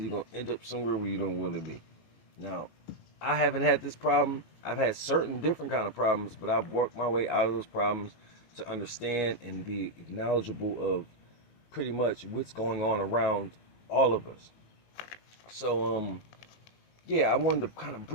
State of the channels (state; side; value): late; right; 19 ms